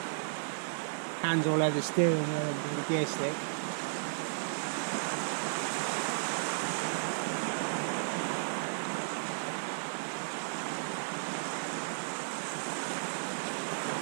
hands all over the steering wheel and the gear stick.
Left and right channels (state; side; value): silent; left; digital silence